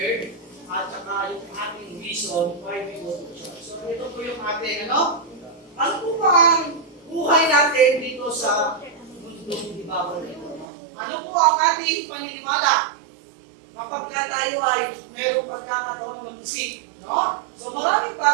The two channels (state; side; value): drops out; left; at 10.7 s